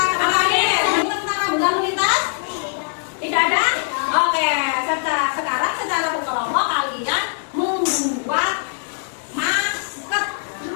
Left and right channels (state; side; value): silent; right; 65 dB below the other